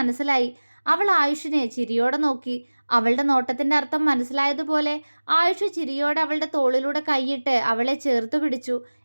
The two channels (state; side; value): inverted; both; correlation -1.00